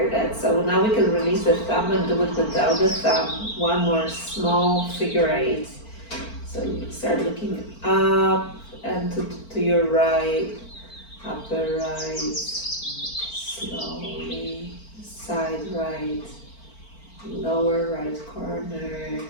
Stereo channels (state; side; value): late; right; 4.4 ms